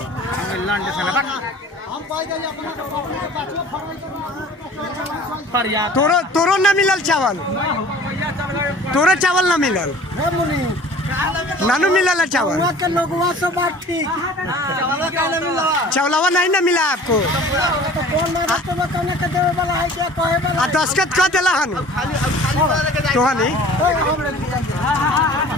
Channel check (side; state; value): both; normal; correlation 0.46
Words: तोरो ना मिलल चावल, तोरो चावल ना मिलल, नानू मिलल चावल, चावलवा नहीं ना मिला आपको। दस्खत कर दिला हन तोहनी